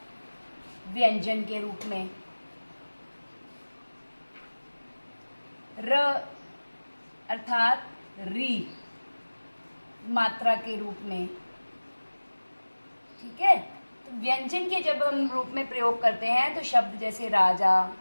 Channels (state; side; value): inverted; both; correlation -1.00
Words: व्यंजन के रूप में, र अर्थात री मात्रा के रूप में। ठीक है, तो व्यंजन के जब हम रूप में प्रयोग करते हैं तो शब्द जैसे राजा,